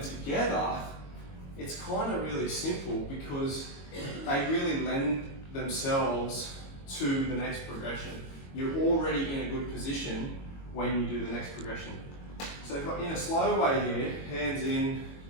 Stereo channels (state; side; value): late; right; 22 ms